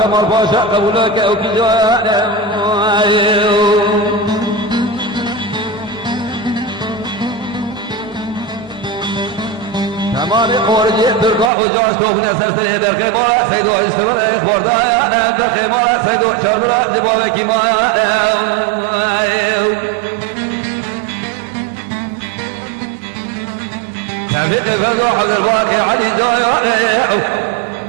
مرفاشا قبولك أو كجايا تمامي خورجي ترقى وجاش توفني سرسي برخي بارا سيدو استمر خوردايا برخي مارا سيدو شربرا دباوي كيمايا تفيد فزو عبد الباقي علي جايا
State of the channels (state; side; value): drops out; left; at 11.5 s